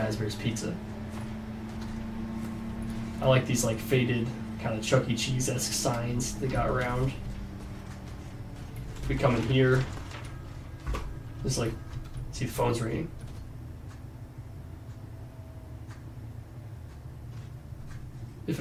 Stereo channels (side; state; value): both; identical; correlation 1.00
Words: Pizza. I like these like faded, kind of Chuck E. Cheese-esque signs they got around. If we come in here, there's like, see the phone's ringing. If